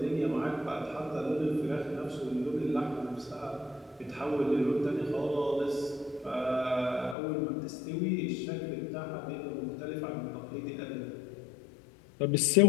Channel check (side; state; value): right; drops out; at 7.2 s